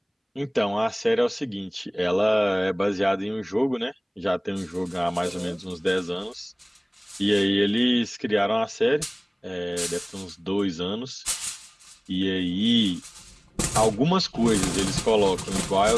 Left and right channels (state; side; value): identical; both; correlation 1.00